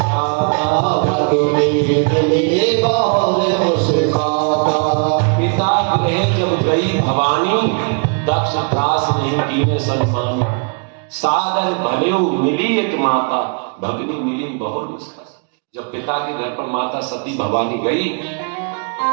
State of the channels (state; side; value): quieter; left; 39.4 dB